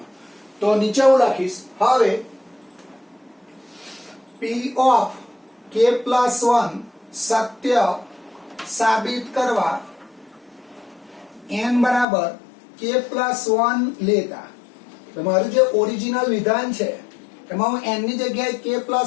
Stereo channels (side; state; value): right; drops out; at 12.1 s